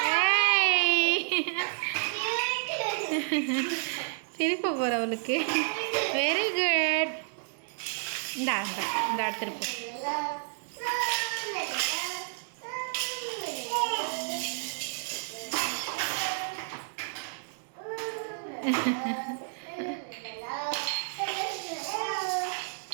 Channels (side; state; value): left; silent; digital silence